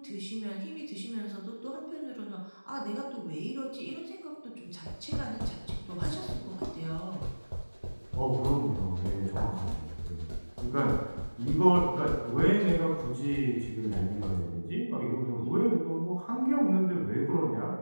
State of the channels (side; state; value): both; inverted; correlation -1.00